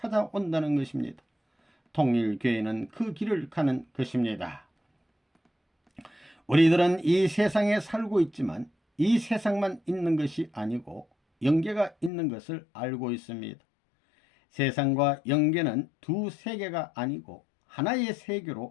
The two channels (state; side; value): drops out; right; at 12.1 s